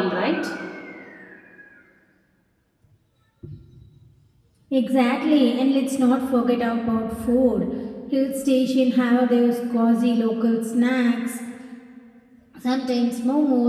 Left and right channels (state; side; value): identical; both; correlation 1.00